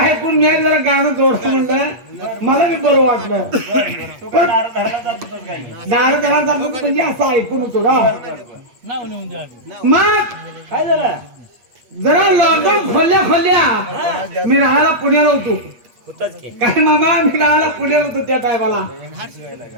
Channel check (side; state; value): left; late; 8.5 ms